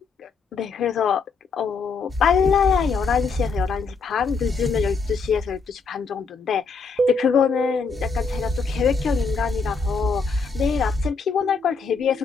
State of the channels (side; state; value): right; quieter; 4.8 dB